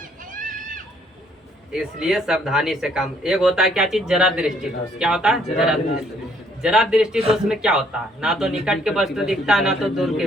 इसलिए सावधानी से काम। एक होता है क्या चीज, जरा दृष्टि दोष। क्या होता है, जरा दृष्टि। जरा दृष्टि दोष में क्या होता है, ना तो निकट के वस्तु दिखता है ना तो दूर की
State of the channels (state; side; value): normal; both; correlation 0.65